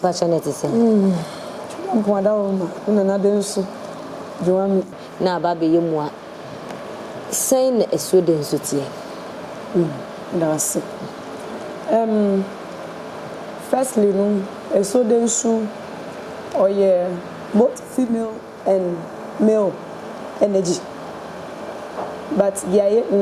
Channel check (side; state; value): both; identical; correlation 1.00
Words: ba chanete se mpoada wo ma na Densu joami na ba be yemu a sei na Asuo Densu tie that's it. Firstly, Asuo Densu or both female and male energy. But the